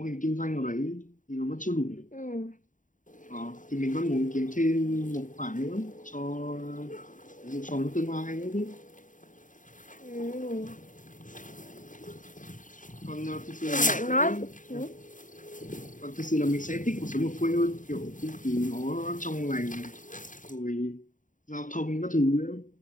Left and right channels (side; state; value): right; late; 0.38 ms